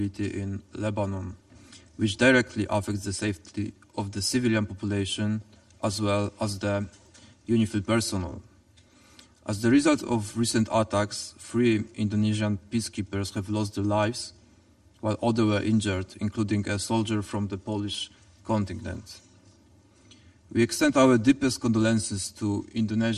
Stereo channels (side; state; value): both; identical; correlation 1.00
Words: in Lebanon, which directly affects the safety of the civilian population as well as the UNIFIL personnel. As the result of recent attacks, 3 Indonesian peacekeepers have lost their lives, while others were injured, including a soldier from the Polish contingent. We extend our deepest condolences to